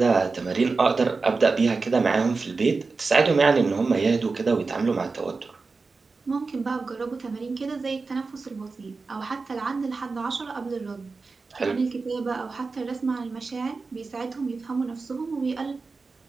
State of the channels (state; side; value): quieter; left; 4.2 dB